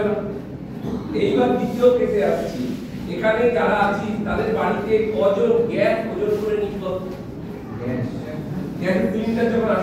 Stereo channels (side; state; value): both; identical; correlation 1.00